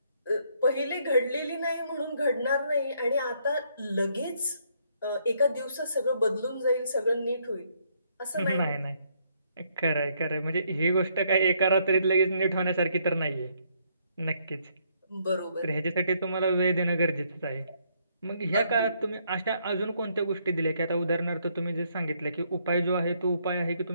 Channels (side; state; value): both; inverted; correlation -0.70